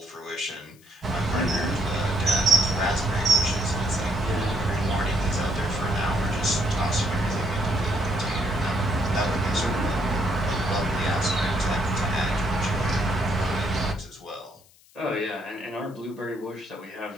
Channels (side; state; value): left; noise; hiss, 28 dB below the sound